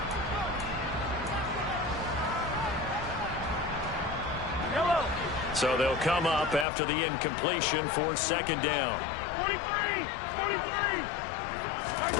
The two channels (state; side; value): drops out; right; at 6.7 s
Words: So they'll come up after the incompletion for second down. 43! 43!